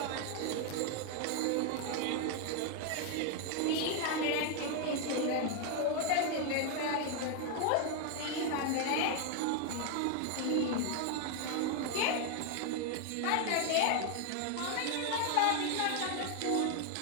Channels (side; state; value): both; different; correlation 0.00